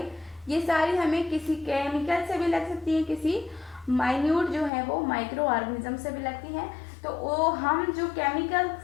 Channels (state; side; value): drops out; right; at 4.7 s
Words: ये सारी हमें किसी केमिकल से भी लग सकती हैं, किसी माइन्यूट जो है वो माइक्रो ऑर्गेनिज्म से भी लगती हैं। तो वो हम जो केमिकल